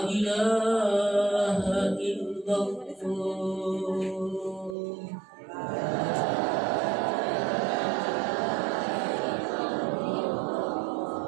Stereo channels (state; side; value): drops out; left; at 4.8 s